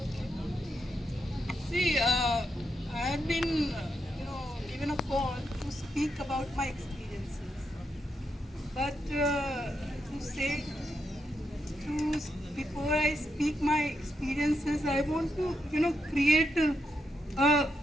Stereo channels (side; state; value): both; normal; correlation 0.82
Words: okay. See, I have been, given a call to speak about my experiences. But to say, to before I speak my experiences, I want to, create,